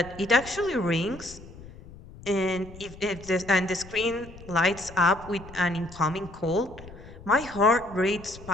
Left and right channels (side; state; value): left; noise; rumble, 17 dB below the sound